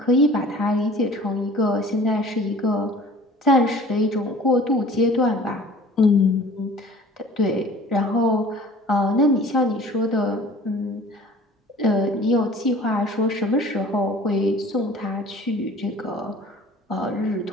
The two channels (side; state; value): both; normal; correlation 0.47